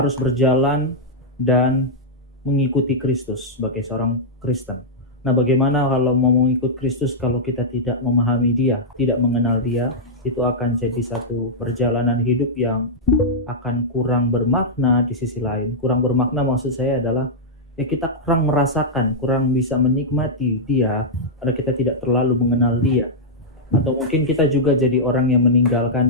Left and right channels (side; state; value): both; normal; correlation -0.08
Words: berjalan dan mengikuti Kristus sebagai seorang Kristen. Nah, bagaimana kalau mau mengikut Kristus kalau kita tidak memahami Dia, tidak mengenal Dia? Itu akan jadi satu perjalanan hidup yang akan kurang bermakna di sisi lain. Kurang bermakna maksud saya adalah ya kita kurang merasakan, kurang bisa menikmati Dia karena kita tidak terlalu mengenal Dia. Atau mungkin kita juga jadi orang yang meninggalkan